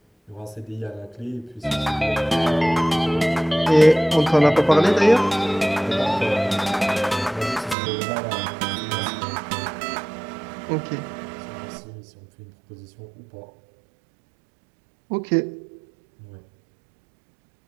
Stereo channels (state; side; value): drops out; left; at 7.8 s